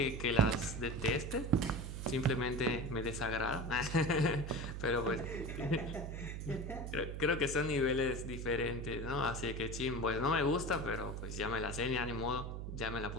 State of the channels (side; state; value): right; noise; hum, 6 dB below the sound